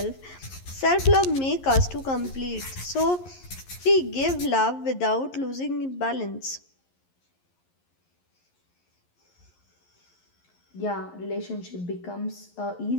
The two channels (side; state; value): right; late; 11 ms